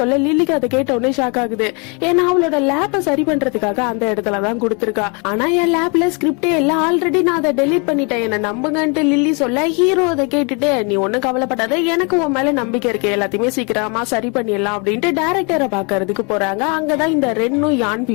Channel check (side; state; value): right; quieter; 33.6 dB